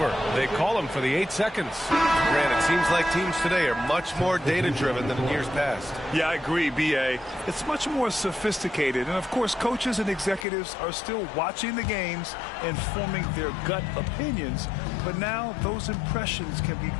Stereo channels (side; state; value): right; drops out; at 10.5 s